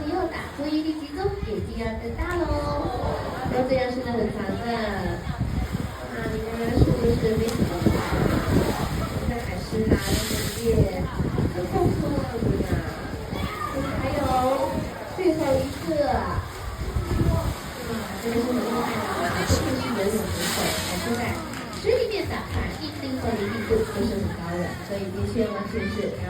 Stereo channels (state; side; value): identical; both; correlation 1.00